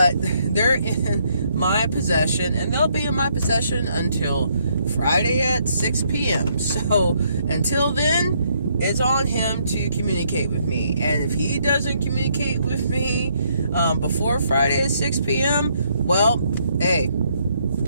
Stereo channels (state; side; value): inverted; both; correlation -0.71